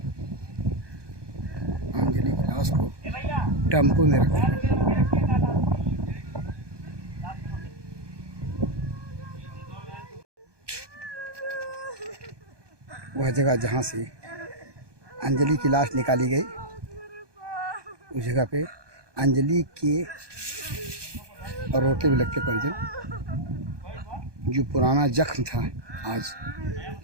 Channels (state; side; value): late; left; 1.2 ms